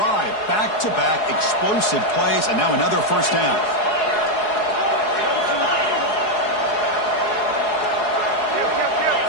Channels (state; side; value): late; right; 4.7 ms